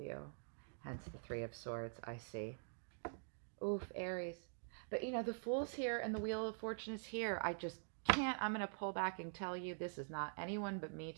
Hence the Three of Swords, I see. Oof, Aries. But the Fool's here and the Wheel of Fortune is here. I just can't. I'm going to pull back and tell you, this is not anyone but me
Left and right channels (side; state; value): left; silent; digital silence